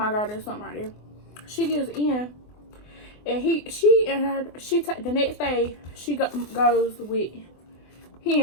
God, there's something right there. She gives in, and the next day she goes with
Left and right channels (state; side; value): late; right; 24 ms